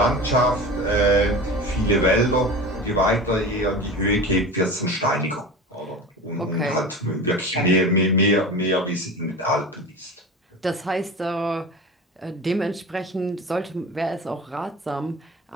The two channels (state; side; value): normal; both; correlation 0.32